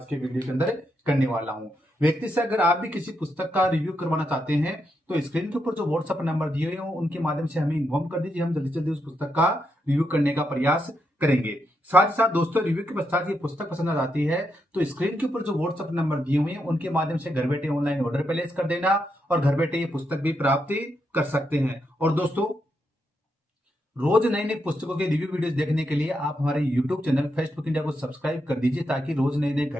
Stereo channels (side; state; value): both; normal; correlation 0.82